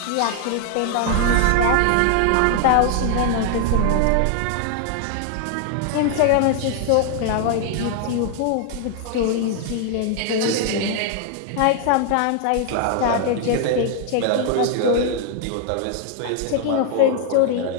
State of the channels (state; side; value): different; both; correlation 0.00